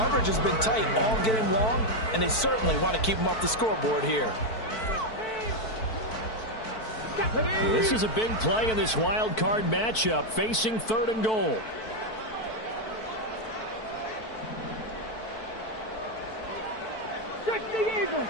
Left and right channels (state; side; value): late; right; 4.5 ms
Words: has been tight all game long, and they certainly want to keep them off the scoreboard here. This is a big play in this wild card matchup, facing 3rd and goal. Eagles,